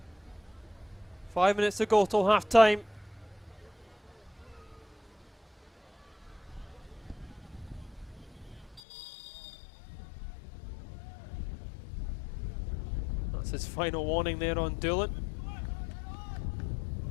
5 minutes to go till half time. That's his final warning there on Doolan.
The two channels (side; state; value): right; drops out; at 8.8 s